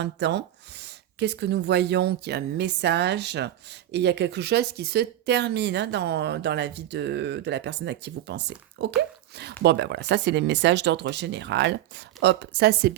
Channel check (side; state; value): left; quieter; 12.9 dB